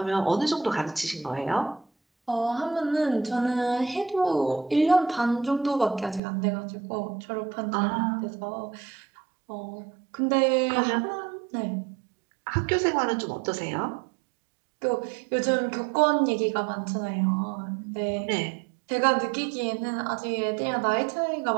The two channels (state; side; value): drops out; left; at 6.2 s